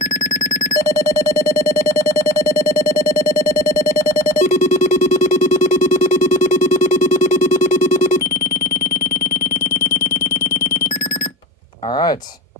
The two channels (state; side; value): normal; both; correlation 0.31